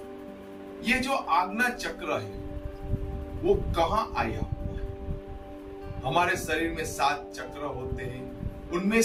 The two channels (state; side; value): identical; both; correlation 1.00